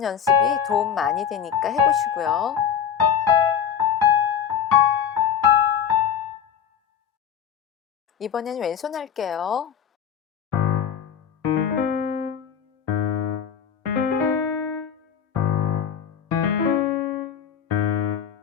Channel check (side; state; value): right; quieter; 8.2 dB